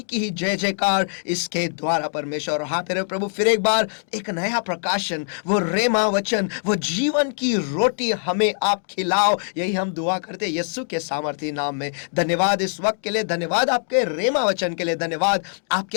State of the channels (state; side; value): silent; right; digital silence